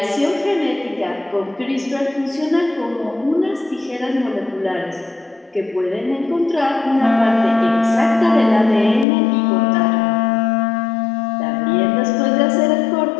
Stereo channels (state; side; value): drops out; right; at 9.1 s